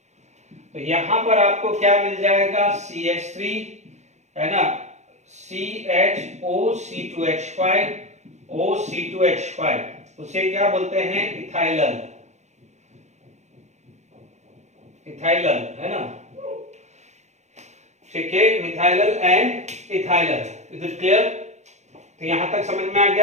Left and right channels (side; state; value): left; late; 0.33 ms